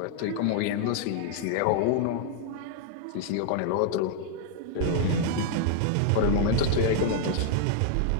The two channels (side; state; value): both; different; correlation 0.00